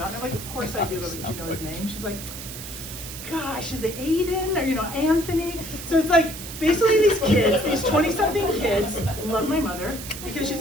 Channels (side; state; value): right; noise; hiss, 10 dB below the sound